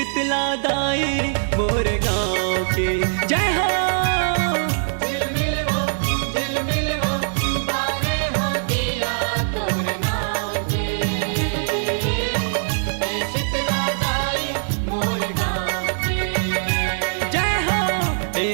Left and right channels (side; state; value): left; silent; digital silence